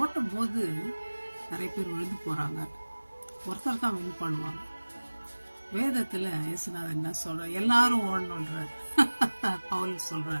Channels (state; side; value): inverted; both; correlation -1.00